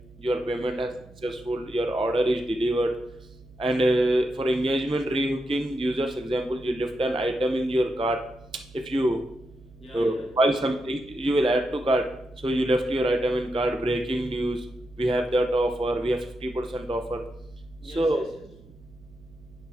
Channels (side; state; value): right; noise; hum, 23 dB below the sound